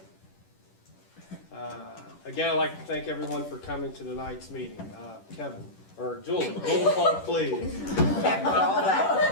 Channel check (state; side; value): late; right; 10 ms